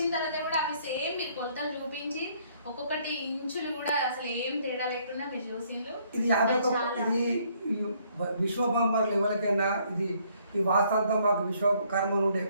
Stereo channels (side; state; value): both; inverted; correlation -0.66